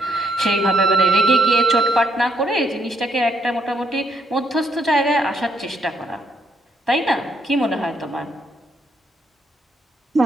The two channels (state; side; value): normal; both; correlation 0.74